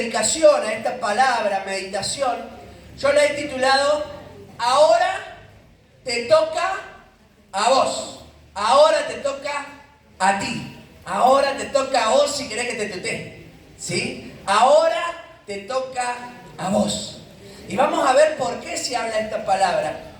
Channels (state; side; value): identical; both; correlation 1.00